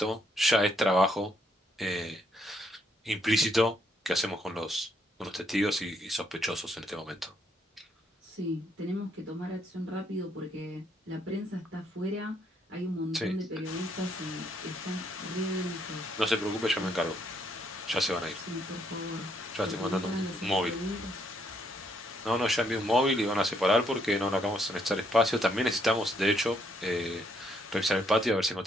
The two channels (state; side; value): normal; both; correlation 0.72